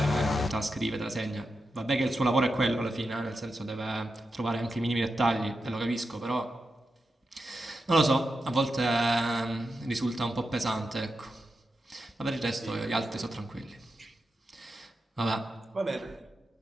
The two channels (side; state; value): both; normal; correlation 0.89